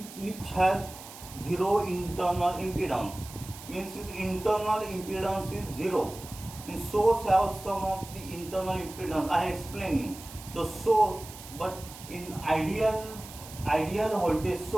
has zero internal impedance. Means its internal impedance is zero. Means source has some of the internal impedance. I am explaining the source, but in ideal voltage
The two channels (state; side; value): noise; right; hiss, 15 dB below the sound